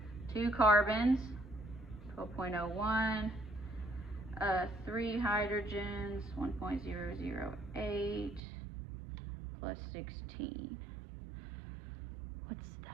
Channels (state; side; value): drops out; left; at 8.4 s